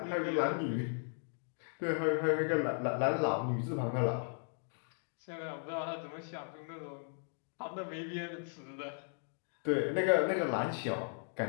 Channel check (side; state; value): right; silent; 53 dB below the other